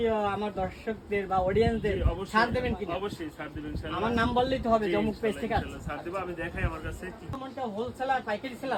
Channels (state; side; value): identical; both; correlation 1.00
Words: আমার দর্শকদের বা অডিয়েন্সদের ছাড় দেবেন কি? অবশ্যই ছাড় দেবেন ইনশাআল্লাহ। আমার নাম বললেই তো হবে, জমুক পেজ থেকে আছে। ছাড় দেব, আমি দেখাই আমার কাছে কি। সম্মানিত হোলসেলার পাইকারি